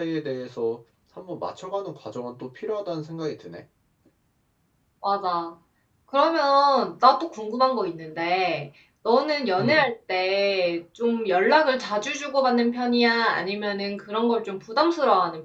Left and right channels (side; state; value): both; identical; correlation 1.00